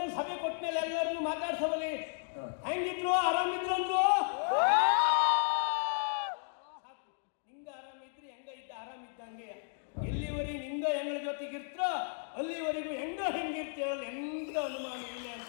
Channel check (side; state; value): right; silent; digital silence